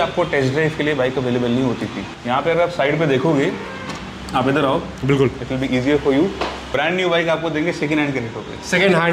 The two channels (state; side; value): identical; both; correlation 1.00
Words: टेस्ट ड्राइव के लिए बाइक अवेलेबल नहीं होती थी। यहाँ पे अगर आप साइड पे देखोगे, आप इधर आओ, बिल्कुल it will be easier for you. Brand new bike आपको देंगे सेकंड हैंड के रेटों पे। सेकंड